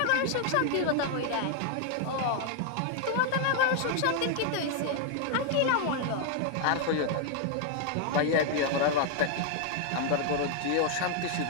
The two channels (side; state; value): both; different; correlation 0.00